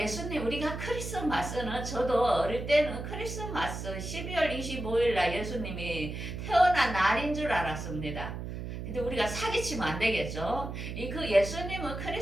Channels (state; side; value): noise; right; hum, 6 dB below the sound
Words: 우리가 크리스마스는 저도 어릴 때는 크리스마스 12월 25일 날 예수님이 태어난 날인 줄 알았습니다. 근데 우리가 사기치면 안 되겠죠. 그 예수님은